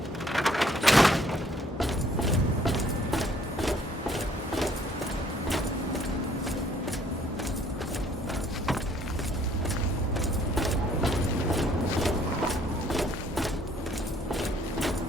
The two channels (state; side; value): normal; both; correlation 0.61